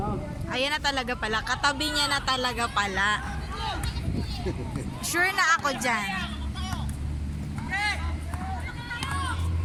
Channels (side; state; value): both; identical; correlation 1.00